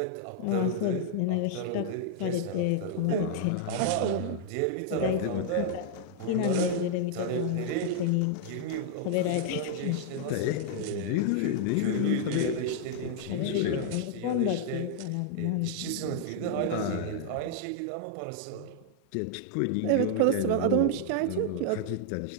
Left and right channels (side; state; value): both; different; correlation -0.01